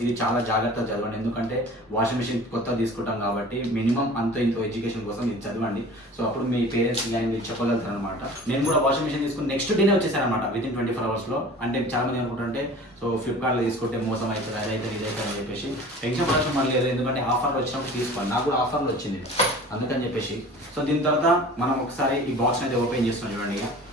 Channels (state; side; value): normal; both; correlation 0.42